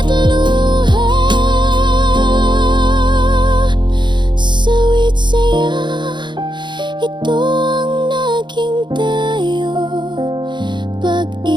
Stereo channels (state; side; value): late; left; 0.22 ms